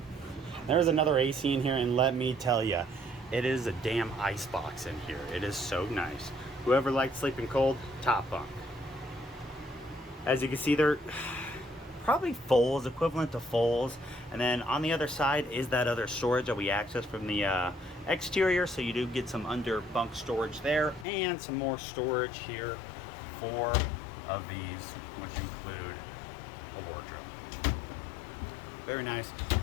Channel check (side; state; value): right; drops out; at 21.1 s